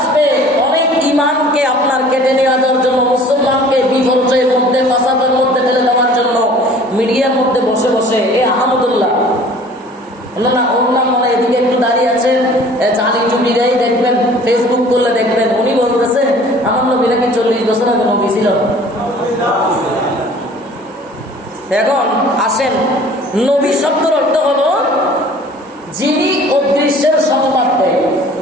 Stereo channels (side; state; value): both; normal; correlation 0.49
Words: অনেক ইমানকে আপনার কেটে নেওয়ার জন্য, মুসলমানকে বিপর্যয়ের মধ্যে, ফাসাদের মধ্যে ফেলে দেওয়ার জন্য মিডিয়ার মধ্যে বসে বসে এ আহমদুল্লাহ না, ওর নাম মানে এদিকে একটু দাঁড়িয়ে আছেন, চালি চুপি দেয়, দেখবেন ফেসবুক করলে দেখবেন উনি বলতেছে আমার নবী নাকি 40 বছর আগে নবী ছিল। এখন আসেন, নবী শব্দের অর্থ হলো যিনি অদৃশ্যের সংবাদ দেয়।